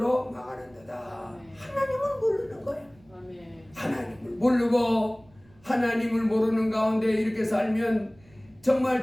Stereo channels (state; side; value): noise; right; rumble, 29 dB below the sound